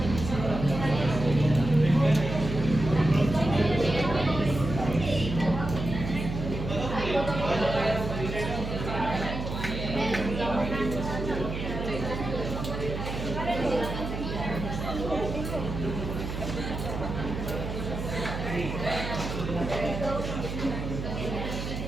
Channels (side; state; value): right; noise; hum, 5 dB below the sound